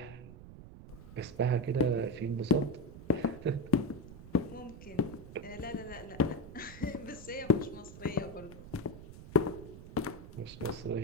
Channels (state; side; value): noise; right; rumble, 15 dB below the sound